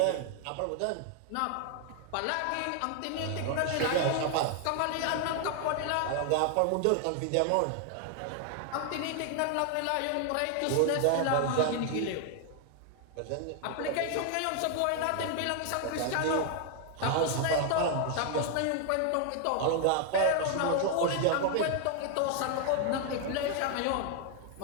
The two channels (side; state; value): both; different; correlation 0.00